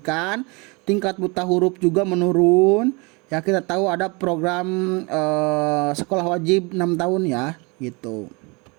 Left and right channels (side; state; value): left; quieter; 28.7 dB